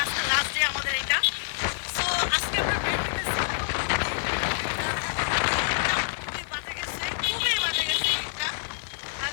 আজকে লাস্ট ডে আমাদের এটা। সো আজকে আমরা বের হইতেছি। খুবই বাজে গেছে, খুবই বাজে গেছে ঈদটা। আর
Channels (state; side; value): silent; right; digital silence